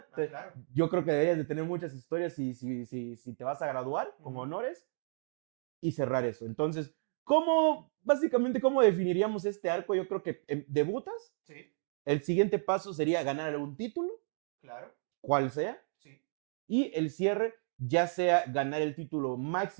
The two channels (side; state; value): left; silent; digital silence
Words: Claro. Yo creo que deberías de tener muchas historias si te vas a graduar con honores y cerrar eso. Entonces, básicamente, cómo definiríamos este arco? Yo creo que debutas. Sí. El siguiente paso sería ganar un título. Claro. Cual sea. Sí. Y el cierre, ya sea ganar el título